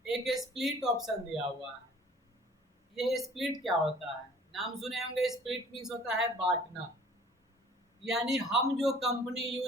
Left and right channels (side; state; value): both; normal; correlation 0.51